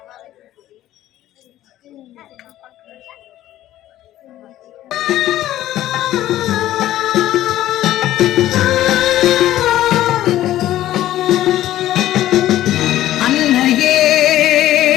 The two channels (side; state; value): right; quieter; 13.8 dB